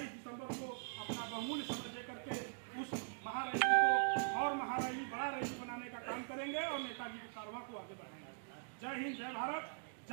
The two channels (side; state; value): left; silent; digital silence